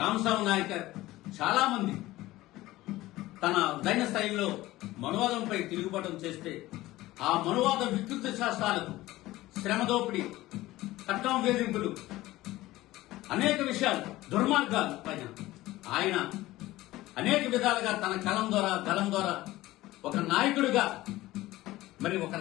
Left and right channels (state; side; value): quieter; right; 17.3 dB